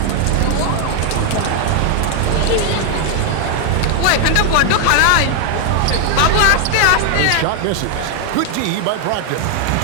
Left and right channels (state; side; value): different; both; correlation 0.00